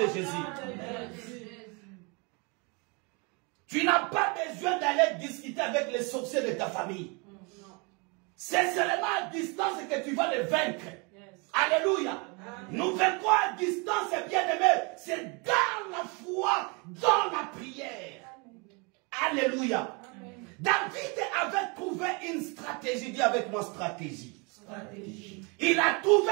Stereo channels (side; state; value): left; quieter; 31.2 dB